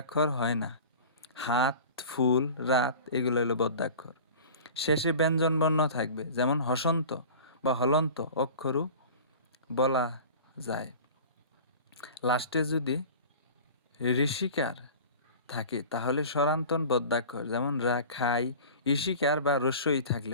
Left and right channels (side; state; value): both; inverted; correlation -0.39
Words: হয় না, হাত, ফুল, রাত এগুলো হলো বদ্যাক্ষর। শেষে ব্যঞ্জনবর্ণ থাকবে, যেমন হসন্ত বা হলন্ত অক্ষরও বলা যায়। লাস্টে যদি ঋষিকার থাকে তাহলে স্বরান্তন বদ্যাক্ষর, যেমন রা, খাই, ঈশিকার বা রস্যই